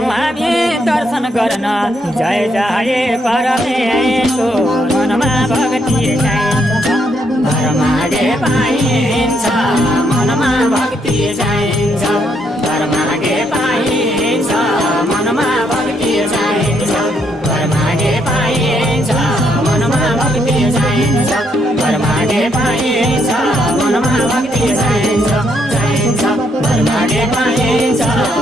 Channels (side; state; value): both; normal; correlation 0.74